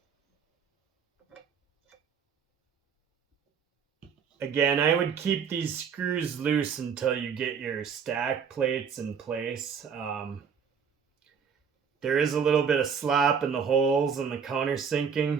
Again, I would keep these screws loose until you get your stack plates in place. There is a little bit of slop in the holes and the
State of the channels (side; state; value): left; quieter; 6.7 dB